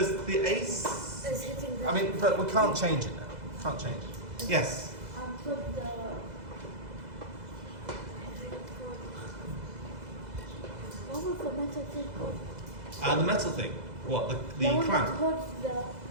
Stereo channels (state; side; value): late; left; 2.0 ms